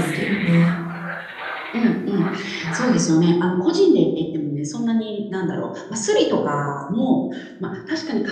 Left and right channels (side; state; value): both; identical; correlation 1.00